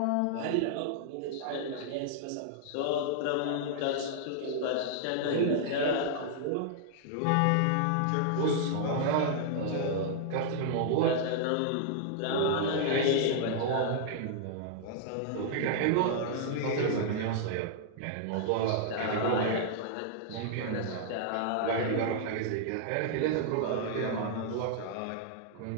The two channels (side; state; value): both; different; correlation -0.01